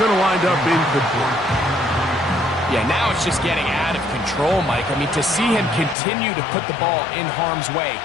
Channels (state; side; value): drops out; right; at 6.0 s